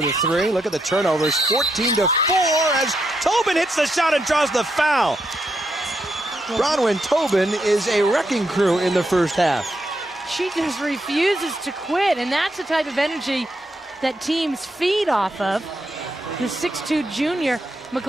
the three. Look at the turnovers. 14-4 as Tobin hits the shot and draws the foul. Bronwyn Tobin is a wrecking crew in the first half. She just refuses to quit, and that's the type of energy that teams feed off of. The 6'2" junior.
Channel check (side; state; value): both; normal; correlation 0.81